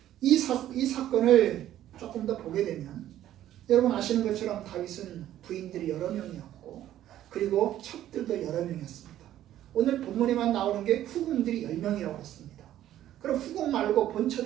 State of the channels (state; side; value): quieter; left; 12.4 dB